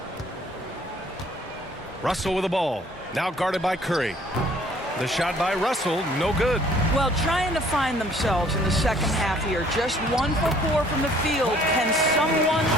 Russell with the ball. Now guarded by Curry. The shot by Russell, no good. Well, trying to find themselves in the second half here. Just 1 for 4 from the field. Can someone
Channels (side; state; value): both; normal; correlation 0.58